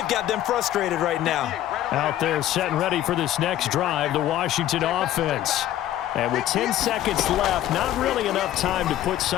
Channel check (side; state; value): right; quieter; 12.7 dB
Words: got them frustrated right now. Out there set and ready for this next drive, the Washington offense. And with 10 seconds left, not really enough time to put